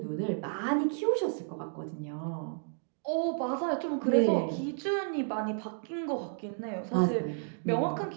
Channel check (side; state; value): left; silent; digital silence